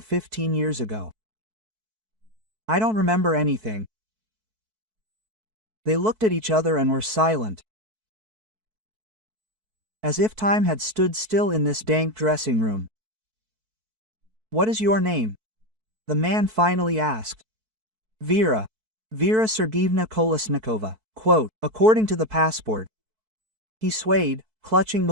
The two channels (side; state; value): left; late; 4.6 ms